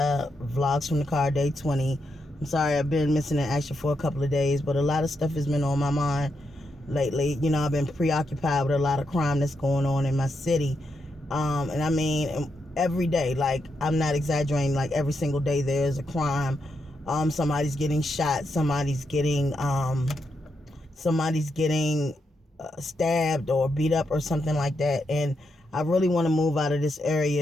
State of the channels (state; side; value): normal; both; correlation 0.82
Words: Vlogs from the Car, Day 20. I'm sorry I've been missing in action for a couple of days, but a lot of stuff has been on my mind lately. I've been preoccupied with a lot of crime that's going on in my city. And I mean, every day, like, I'm not exaggerating, like, every single day there's a crime. Somebody's getting shot, somebody's getting stabbed or beat up or something like that. And I really want to move out of this